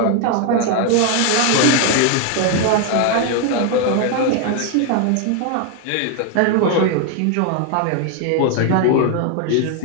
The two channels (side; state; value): both; different; correlation 0.01